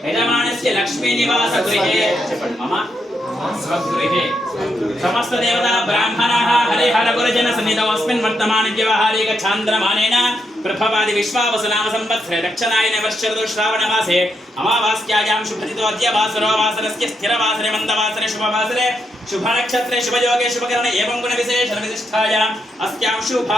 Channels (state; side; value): normal; both; correlation 0.81